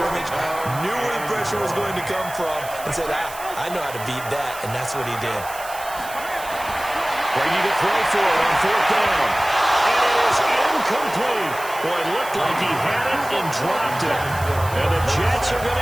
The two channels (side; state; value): right; noise; hiss, 14 dB below the sound